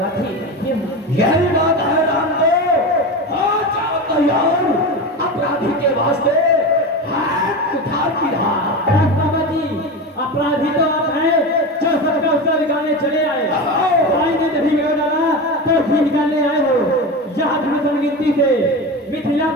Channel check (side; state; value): both; normal; correlation 0.24